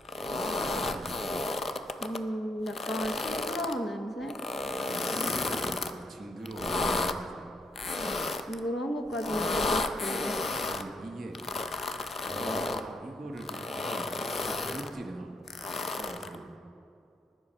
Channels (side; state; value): both; normal; correlation 0.73